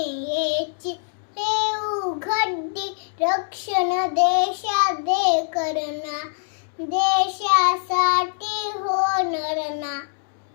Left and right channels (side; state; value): right; silent; digital silence